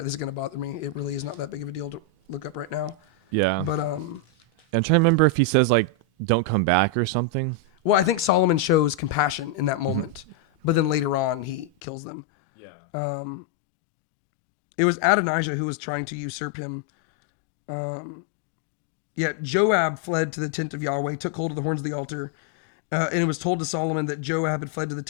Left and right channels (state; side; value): drops out; right; at 11.7 s